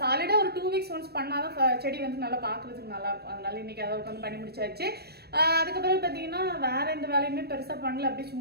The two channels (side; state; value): left; late; 0.47 ms